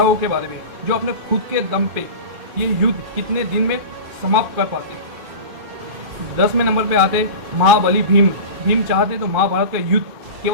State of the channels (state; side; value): late; left; 2.5 ms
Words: के बारे में जो अपने खुद के दम पे ये युद्ध कितने दिन में समाप्त कर पाते। 10वें नंबर पे आते महाबली भीम। भीम चाहते तो महाभारत का युद्ध